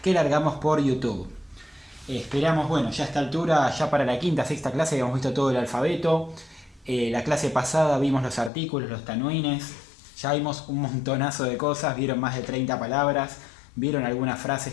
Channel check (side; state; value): right; drops out; at 8.5 s